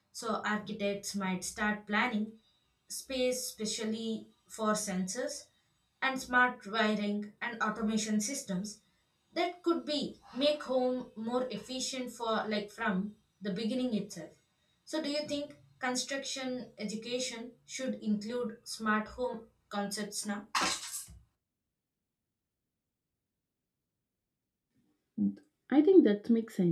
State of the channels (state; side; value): identical; both; correlation 1.00